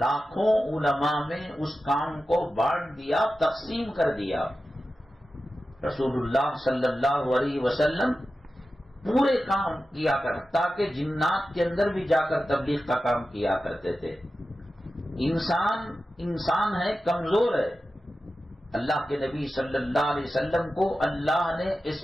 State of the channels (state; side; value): normal; both; correlation 0.93